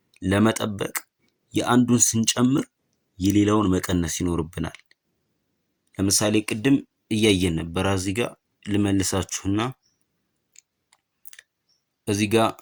ለመጠበቅ የአንዱን ስንጨምር የሌላውን መቀነስ ይኖርብናል። ለምሳሌ ቅድም እያየን ነበር። እዚህ ጋር ልመልሳችሁና እዚህ ጋር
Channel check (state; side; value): identical; both; correlation 1.00